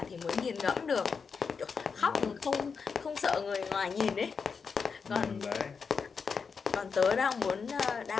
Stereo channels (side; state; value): right; quieter; 5.6 dB